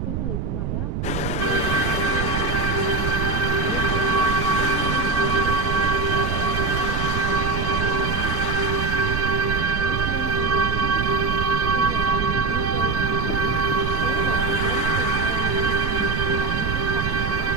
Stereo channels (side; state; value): right; noise; rumble, 2 dB below the sound